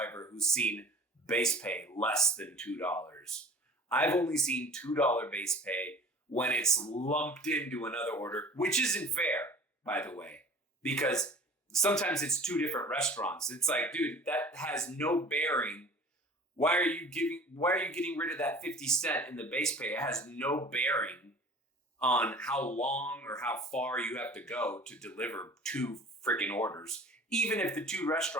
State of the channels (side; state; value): both; normal; correlation 0.43